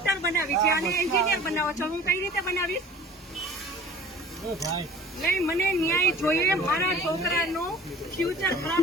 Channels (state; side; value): normal; both; correlation 0.44